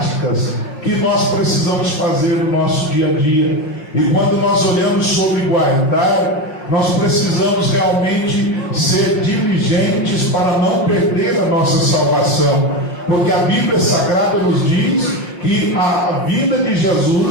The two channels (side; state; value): right; late; 5.6 ms